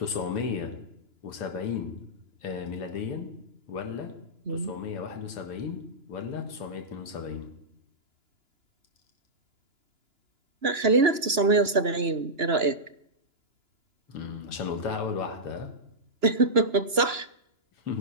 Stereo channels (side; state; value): left; late; 2.9 ms